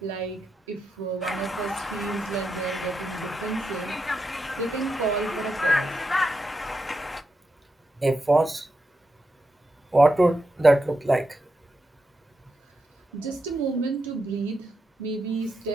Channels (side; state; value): both; normal; correlation 0.85